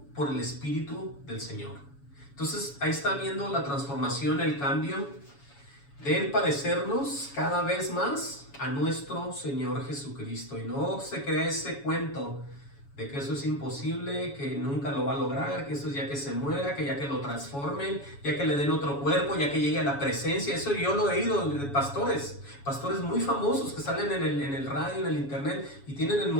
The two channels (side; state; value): right; late; 7.1 ms